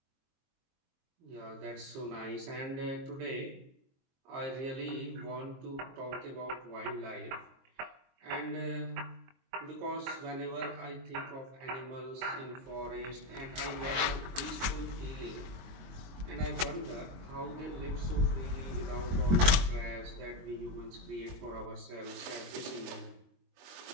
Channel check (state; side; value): late; left; 22 ms